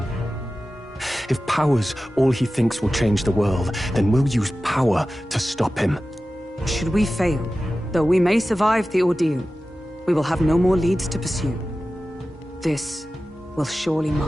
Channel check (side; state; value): both; normal; correlation 0.95